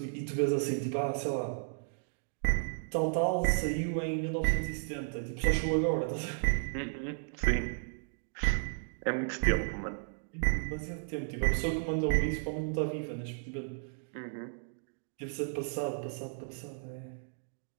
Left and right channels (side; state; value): left; silent; digital silence